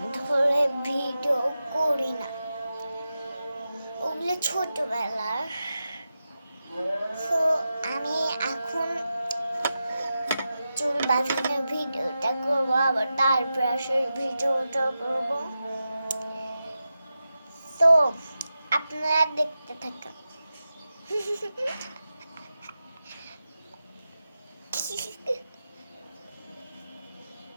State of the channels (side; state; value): both; inverted; correlation -0.91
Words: ধরে video করি না, ওগুলো ছোটবেলার। তো আমি এখন চুল বাঁধানোর ভিডিওটা করবো, আবার তার ব্রাশের ভিডিওটা করবো। তো আপনারা দেখতে থাকুন।